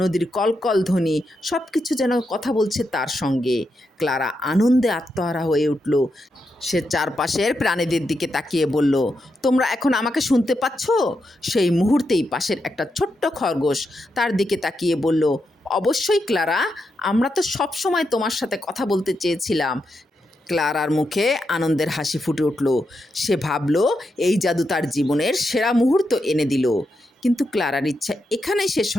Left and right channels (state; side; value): normal; both; correlation 0.84